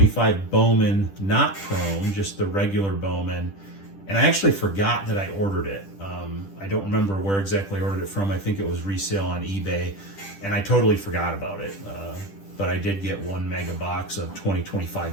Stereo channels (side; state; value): right; late; 10 ms